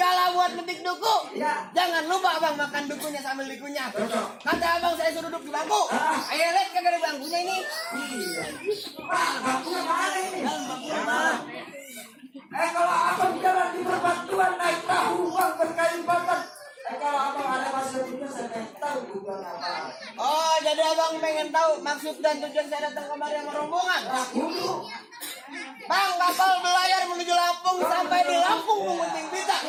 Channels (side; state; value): both; identical; correlation 1.00